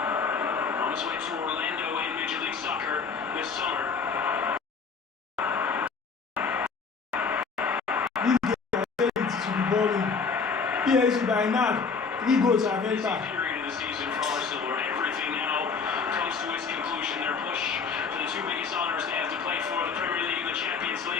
On his way to Orlando in Major League Soccer this summer. This game to be boring. PSG by now, 3 goals are Busy better. period of the season for Arsenal, where everything now comes to its conclusion. Their push for the 2 biggest honors they have to play for, the Premier League and the Champions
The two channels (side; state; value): right; quieter; 5.3 dB